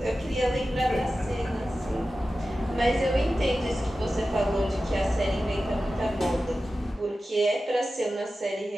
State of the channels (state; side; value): normal; both; correlation 0.94